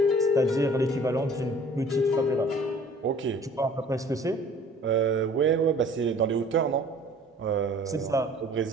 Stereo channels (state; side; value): normal; both; correlation 0.50